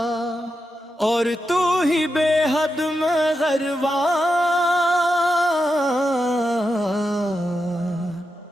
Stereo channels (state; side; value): normal; both; correlation 0.87